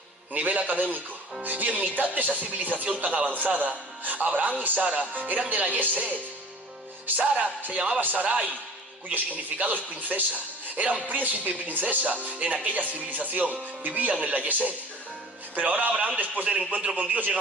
nivel académico. Y en mitad de esa civilización tan avanzada, Abraham y Sara eran de la Yesed. Sara se llamaba Sarai, cuyo significado es princesa. Eran príncipe y princesa en aquella civilización, vivían en la Yesed. Pero ahora Abraham, después del encuentro con Dios, llega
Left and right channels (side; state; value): both; normal; correlation 0.44